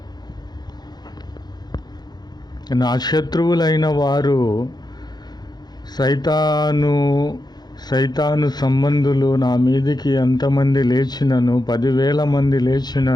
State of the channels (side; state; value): right; late; 0.20 ms